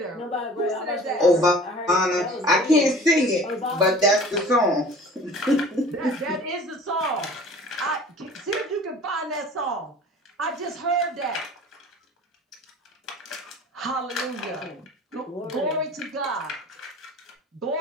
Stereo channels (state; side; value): normal; both; correlation 0.44